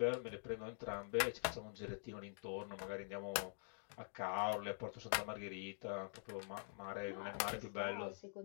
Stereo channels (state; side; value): silent; right; digital silence